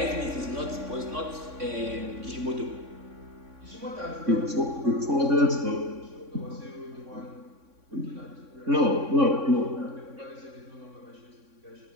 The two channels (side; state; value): left; late; 3.6 ms